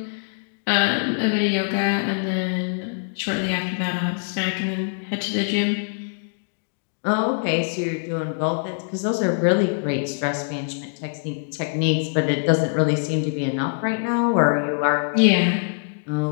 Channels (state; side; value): silent; right; digital silence